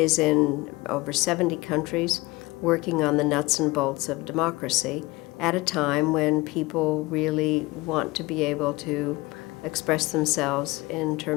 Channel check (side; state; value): right; quieter; 22.1 dB